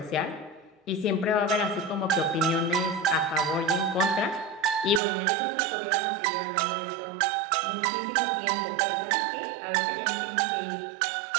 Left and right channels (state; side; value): drops out; left; at 5.0 s